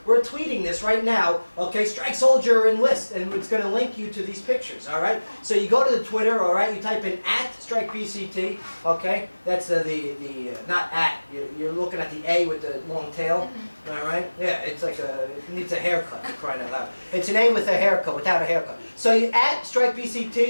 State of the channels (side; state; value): both; inverted; correlation -1.00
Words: we're tweeting this right now, okay? Strike Soldier Enlist, and it's going to link you to these pictures, all right? So you go to the Twitter, all right? You type in @StrikeBCT, okay? That's the not at, you're looking at the A with the long tail, all right? Yeah, it's like it needs a haircut, for crying out loud. It's an A with a haircut, without a haircut. So you